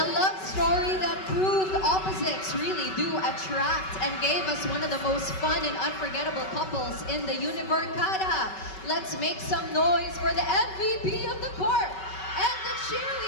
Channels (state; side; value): late; right; 5.3 ms